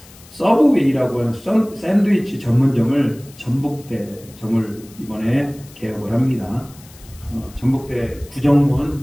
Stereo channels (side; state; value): left; noise; hiss, 23 dB below the sound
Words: 서브웨이라고 하는 샌드위치 전문점을 전북대점을 이번에 개업을 합니다. 전북대